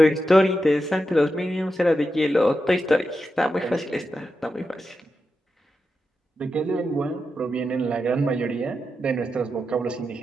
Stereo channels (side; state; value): both; normal; correlation 0.88